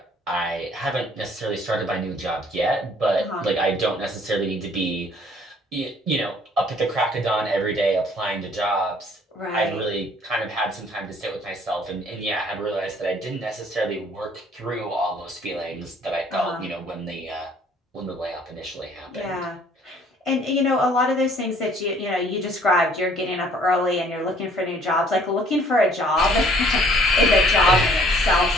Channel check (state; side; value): normal; both; correlation 0.58